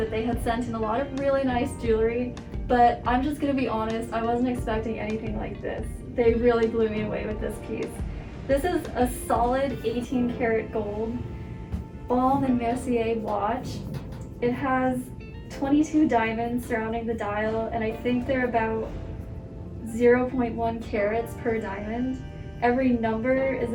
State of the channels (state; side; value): identical; both; correlation 1.00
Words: they had sent in a lot of really nice jewelry, but I'm just going to be honest, I wasn't expecting anything like this. They really blew me away with this piece. This is a solid 18 karat gold Baume and Mercier watch. It has 22 diamonds surrounding the dial, and I think they're about 0.1 carats per diamond. Every number is